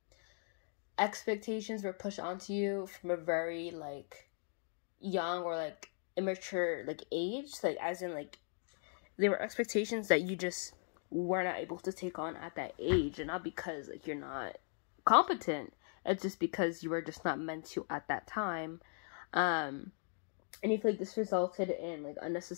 expectations were pushed onto you from a very like young or like immature like age, like as in like there were expectations that you just were not able to take on at that age, and not because like you're not competent, it's just because you were just not meant to at that time. And you feel like this resulted in like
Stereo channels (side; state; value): right; silent; 52 dB below the other